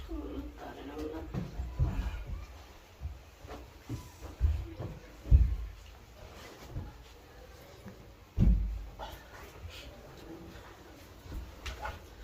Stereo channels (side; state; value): both; identical; correlation 1.00